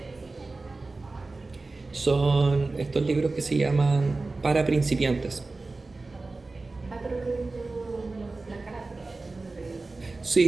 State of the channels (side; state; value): left; quieter; 3.5 dB